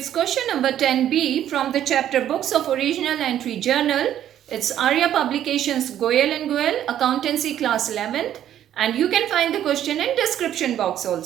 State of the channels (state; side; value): quieter; left; 11.1 dB